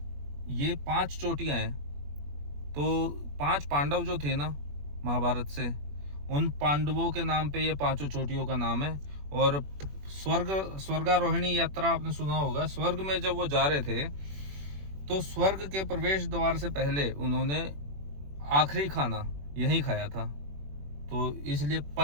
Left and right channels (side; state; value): left; late; 21 ms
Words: ये 5 चोटियाँ हैं। तो 5 पांडव जो थे ना महाभारत से, उन पांडवों के नाम पे ये 5 चोटियों का नाम है। और स्वर्गारोहिणी यात्रा आपने सुना होगा, स्वर्ग में जब वो जा रहे थे तो स्वर्ग के प्रवेश द्वार से पहले उन्होंने आखिरी खाना यहीं खाया था। तो इसलिए